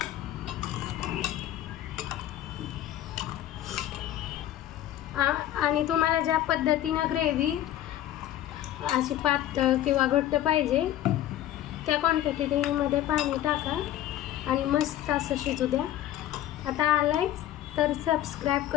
आणि तुम्हाला ज्या पद्धतीनं ग्रेव्ही अशी पातळ किंवा घट्ट पाहिजे त्या क्वांटिटीमध्ये पाणी टाका आणि मस्त असं शिजू द्या। आता आलायच तर सबस्क्राईब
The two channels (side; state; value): right; quieter; 12.8 dB